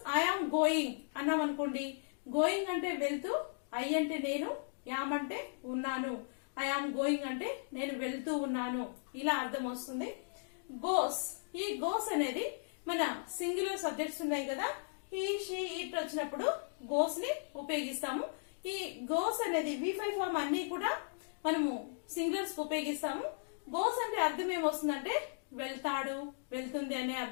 ఐ ఆమ్ గోయింగ్ అన్నాం అనుకోండి, గోయింగ్ అంటే వెళ్తూ, ఐ అంటే నేను, యామ్ అంటే ఉన్నాను, ఐ ఆమ్ గోయింగ్ అంటే నేను వెళ్తూ ఉన్నాను, ఇలా అర్థం వస్తుంది. గోస్. ఈ గోస్ అనేది మన సింగులర్ సబ్జెక్ట్స్ ఉన్నాయి కదా, హీ షీ ఇట్ వచ్చినప్పుడు గోస్ ని ఉపయోగిస్తాము. ఈ గోస్ అనేది V5 ఫామ్ అన్ని కూడా మనము సింగులర్స్ ఉపయోగిస్తాము. గోస్ అంటే అర్థం ఏమొస్తుందంటే వెళ్తాడు, వెళ్తుంది అనే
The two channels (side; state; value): right; silent; digital silence